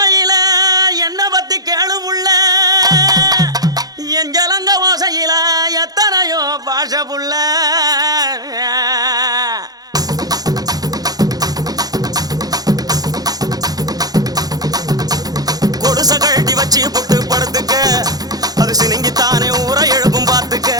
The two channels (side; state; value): left; late; 0.19 ms